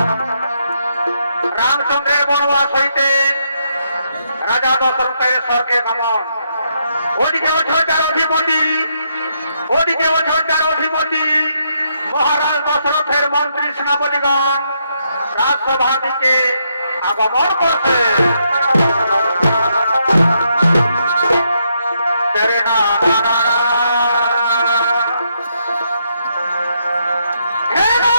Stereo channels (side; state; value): both; inverted; correlation -0.77